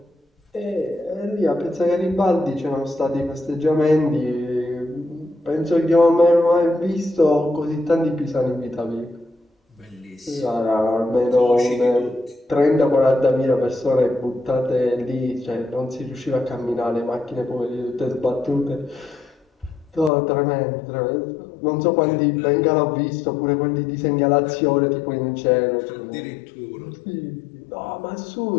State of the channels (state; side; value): drops out; right; at 20.1 s